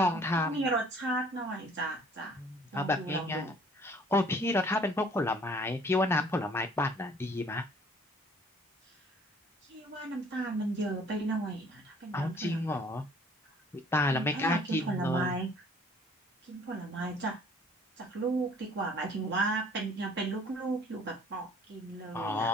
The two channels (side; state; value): both; normal; correlation 0.56